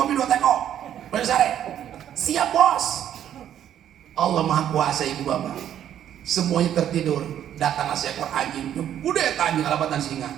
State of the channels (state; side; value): quieter; left; 10.4 dB